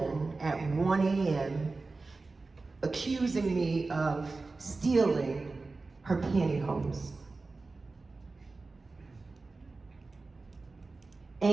at 1 a.m. accusing me of stealing her pantyhose.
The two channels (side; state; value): left; quieter; 3.7 dB